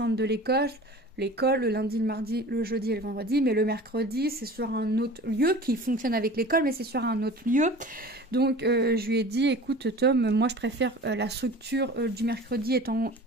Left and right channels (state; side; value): normal; both; correlation 0.40